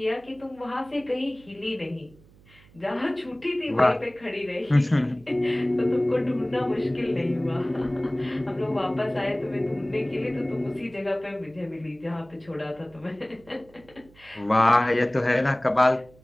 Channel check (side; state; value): right; noise; hum, 26 dB below the sound